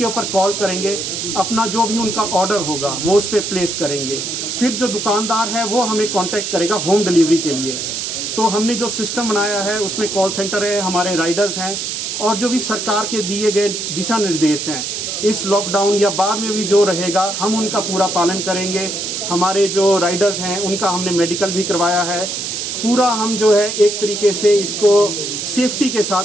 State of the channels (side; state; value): right; noise; hiss, 4 dB below the sound